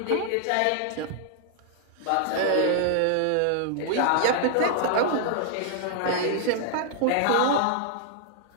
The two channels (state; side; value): different; both; correlation -0.01